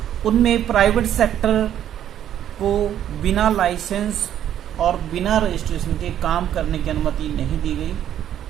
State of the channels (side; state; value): left; quieter; 10.7 dB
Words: उनमें प्राइवेट सेक्टर को बिना लाइसेंस और बिना रजिस्ट्रेशन के काम करने की अनुमति नहीं दी गई।